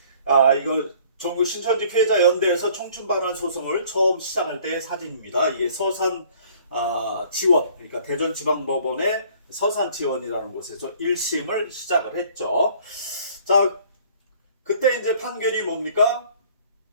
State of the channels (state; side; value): inverted; both; correlation -0.55